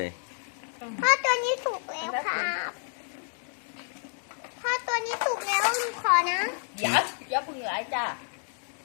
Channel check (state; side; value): silent; right; 58 dB below the other